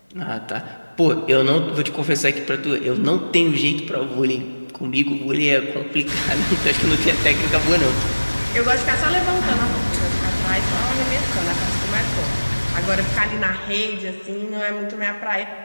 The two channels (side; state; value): both; inverted; correlation -1.00